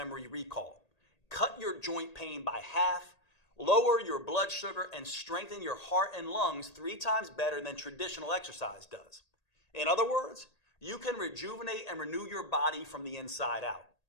recall, cut your joint pain by half, lower your blood sugar, and strengthen your heart and lungs 3 times better than traditional exercise does. In other words, you can rejuvenate and renew your body from the inside out.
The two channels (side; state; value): right; late; 1.8 ms